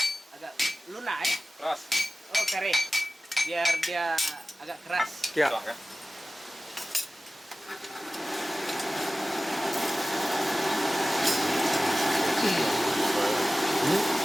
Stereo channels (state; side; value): normal; both; correlation 0.96